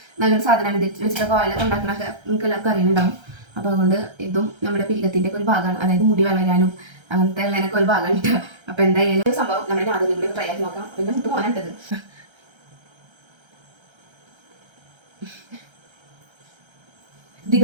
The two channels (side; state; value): left; late; 1.3 ms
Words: നല്ലൊരു സാധനമാണ്. ഇത് വെച്ചിട്ടൊക്കെ ഓയിലൊക്കെ ഉണ്ടാക്കണൊക്കെ നിങ്ങൾക്ക് എല്ലാവർക്കും അറിയുന്നുണ്ടാവും. അപ്പോൾ അതുകൊണ്ട് ഇതും നമ്മുടെ പീകത്തിൻ്റെ ഒക്കെ ഒരു ഭാഗമാണ്. അതായത് മുടി വളരാനും അങ്ങനത്തെ ഉള്ളതിനൊക്കെ ഒരു ഭാഗമുണ്ട്. അപ്പോൾ എന്തായാലും സംഭവം നമ്മുടെ അതിൽ കൂടി ട്രൈ ആക്കി നോക്കാം. പിന്നെ മുട്ട് പോകാനുണ്ടത്